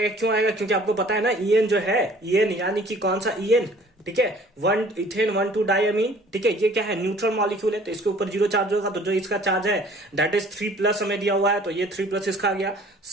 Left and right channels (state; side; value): normal; both; correlation 0.53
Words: क्यों आएगा, क्योंकि आपको पता है ना ईएन जो है, ईएन यानी कि कौन सा ईएन, ठीक है, 1 इथेन 1 2 डायमीन, ठीक है, ये क्या है, न्यूट्रल मॉलिक्यूल है, तो इसके ऊपर 0 चार्ज होगा, तो जो इसका चार्ज है दैट इज 3+ हमें दिया हुआ है, तो ये 3+ इसका आ गया।